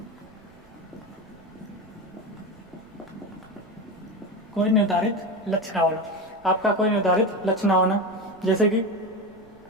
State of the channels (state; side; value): noise; right; rumble, 26 dB below the sound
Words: कोई निर्धारित लक्ष्य ना होना, आपका कोई निर्धारित लक्ष्य ना होना। जैसे कि